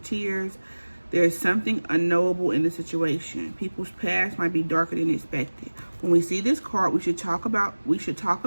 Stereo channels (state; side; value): inverted; both; correlation -1.00